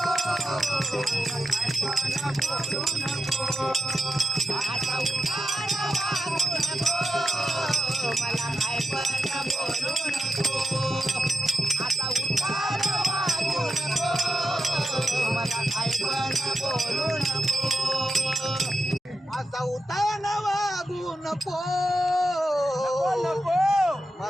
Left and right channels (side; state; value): both; normal; correlation 0.89